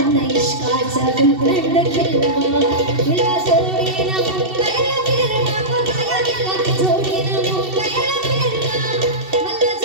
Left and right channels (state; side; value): late; left; 2.7 ms